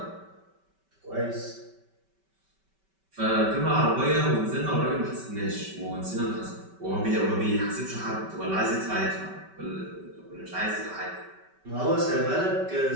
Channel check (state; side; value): late; left; 5.2 ms